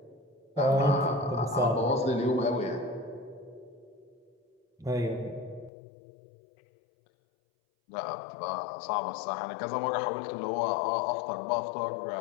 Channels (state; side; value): drops out; right; at 5.7 s